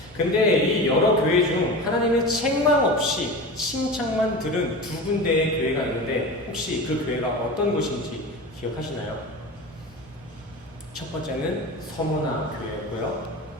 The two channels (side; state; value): both; normal; correlation 0.29